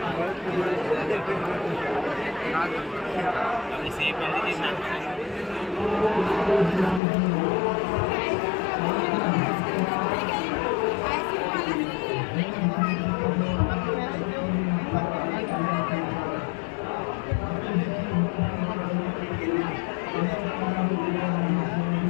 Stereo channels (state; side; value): drops out; right; at 7.0 s